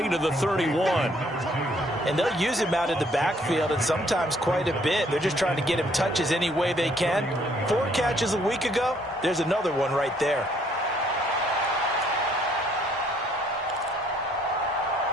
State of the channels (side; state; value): both; normal; correlation 0.65